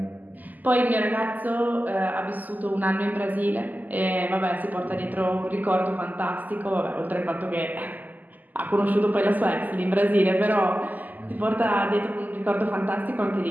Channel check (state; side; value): late; left; 0.082 ms